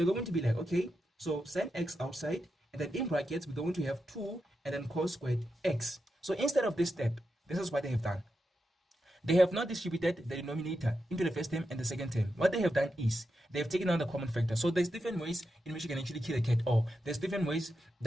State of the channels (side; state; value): both; normal; correlation 0.87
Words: going to be like, okay, so sin x outside, and then in brackets, we're going to have 2 and then cos squared x. So instead of this step, this is what they have done. They have not distributed the denominator into the first term and the second term. What they have done is they have taken out the common factor. So there's different ways in which you can actually kill a cat, or there's different ways